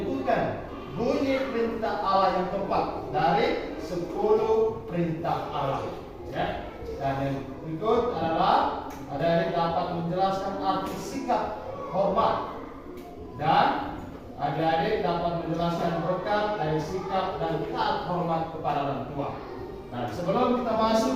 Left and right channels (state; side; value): identical; both; correlation 1.00